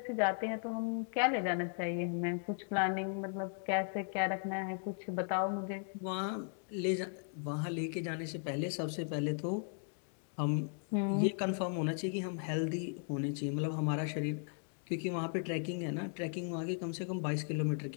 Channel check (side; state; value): right; silent; 53 dB below the other